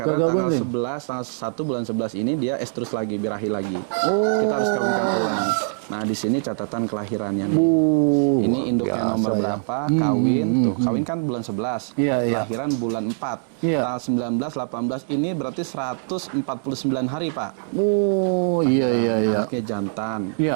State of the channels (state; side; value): silent; left; digital silence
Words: Gagal tanggal bunting. 11, tanggal 1 bulan 11 ini dia estrus lagi, birahi lagi. Kita harus kawinkan ulang. Nah di sini catatan kelahirannya nih. Ini induknya nomor berapa, kawin, tuh kawin kan bulan 11, Iya, iya. lahiran bulan 4, Iya. tanggal 19, 18, ini berarti 149 hari Pak. Oh, iya. Anaknya jantan.